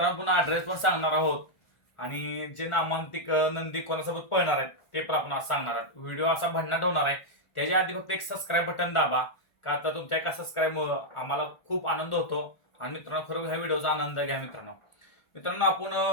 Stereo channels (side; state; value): right; late; 1.4 ms